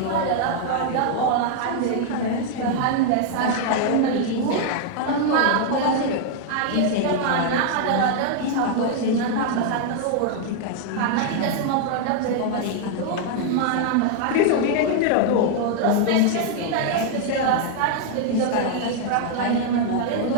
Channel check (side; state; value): both; different; correlation 0.00